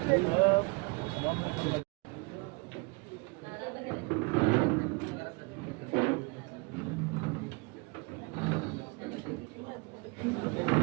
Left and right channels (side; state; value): left; quieter; 29.4 dB